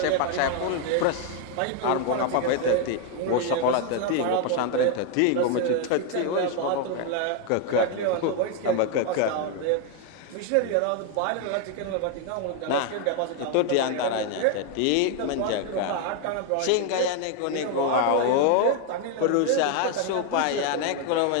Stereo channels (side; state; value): both; different; correlation 0.01